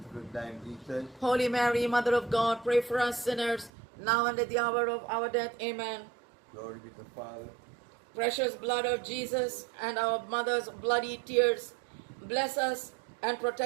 the fruit of thy womb, Jesus. Holy Mary, Mother of God, pray for us sinners, now and at the hour of our death. Amen. Glory be to the Father. Precious blood of Jesus and our mother's bloody tears, bless us and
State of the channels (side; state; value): left; drops out; at 3.7 s